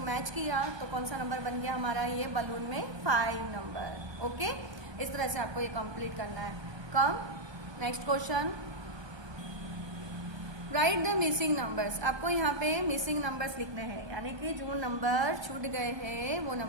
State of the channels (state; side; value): late; left; 1.2 ms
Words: मैच किया तो कौन सा नंबर बन गया हमारा, ये बलून में 5 नंबर। ओके, इस तरह से आपको ये कंप्लीट करना है। कम next question, right the missing numbers. आपको यहाँ पे मिसिंग नंबर्स लिखने हैं, यानी कि जो नंबर छूट गए हैं वो